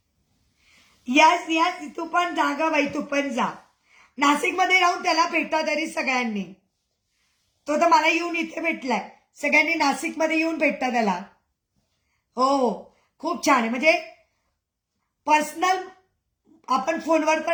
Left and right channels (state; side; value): identical; both; correlation 1.00